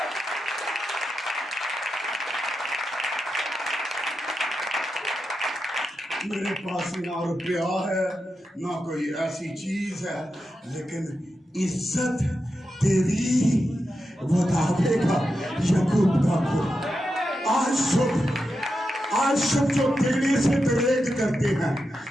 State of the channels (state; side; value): normal; both; correlation 0.88